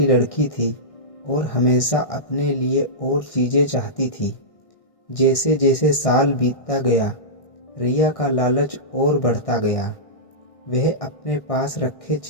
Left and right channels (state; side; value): late; right; 1.6 ms